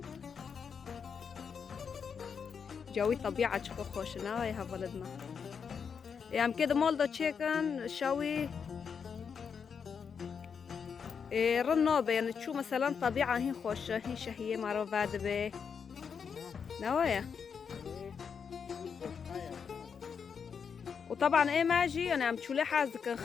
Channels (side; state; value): right; quieter; 6.5 dB